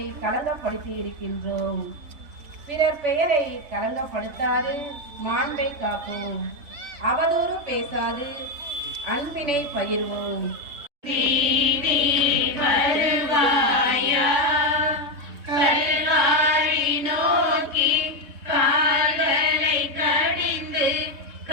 களங்கப்படுத்தி இருக்கின்றோம். பிறர் பெயரை களங்கப்படுத்தாது மாண்பை காப்போம். அவதூறு பேசாது அன்பினை பகிர்வோம். வருவாயா கல்வாரி நோக்கி கால்களை கடிந்து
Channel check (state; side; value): late; left; 3.6 ms